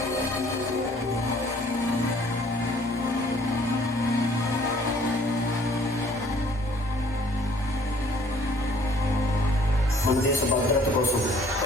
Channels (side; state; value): both; normal; correlation 0.58